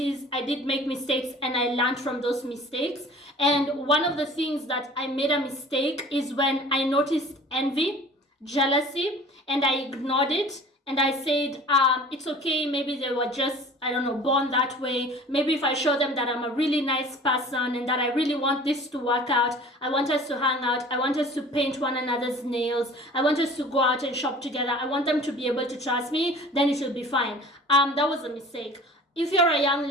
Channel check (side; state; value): both; normal; correlation 0.45